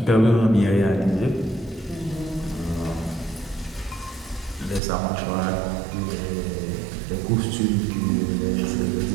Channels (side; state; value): left; drops out; at 4.8 s